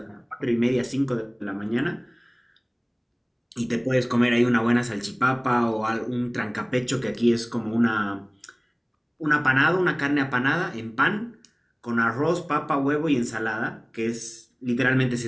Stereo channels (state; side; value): identical; both; correlation 1.00